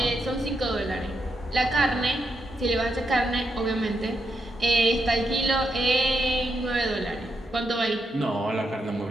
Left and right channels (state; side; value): normal; both; correlation 0.82